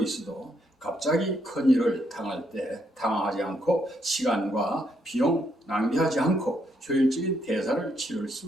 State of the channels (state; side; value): normal; both; correlation 0.75